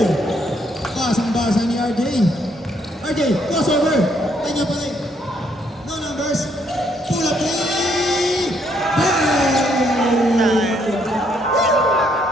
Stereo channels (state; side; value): normal; both; correlation 0.71